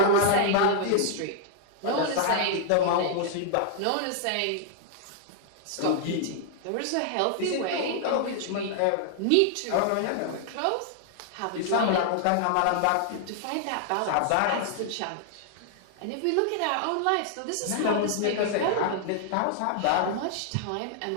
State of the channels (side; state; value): both; different; correlation 0.00